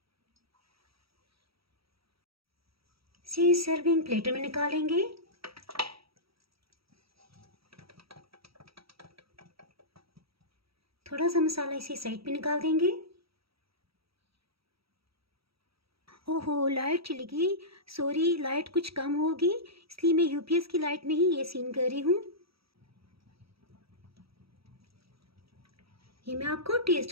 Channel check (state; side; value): late; left; 0.76 ms